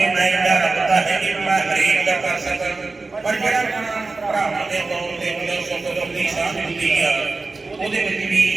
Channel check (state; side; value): quieter; left; 3.7 dB